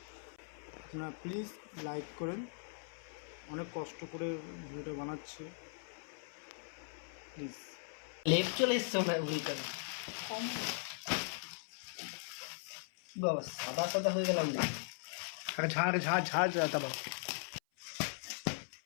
আপনারা প্লিজ লাইক করেন, অনেক কষ্ট করে ভিডিওটা বানাচ্ছি, প্লিজ। লেপ চলে এসছে না উল্টা বাবা, সাদা সাদা হয়ে গেলাম না। ঝাড় ঝাড় ঝাড় যাতা বাবা।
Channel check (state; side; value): silent; right; 52 dB below the other